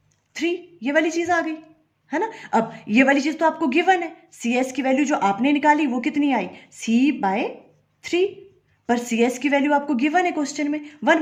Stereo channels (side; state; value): both; identical; correlation 1.00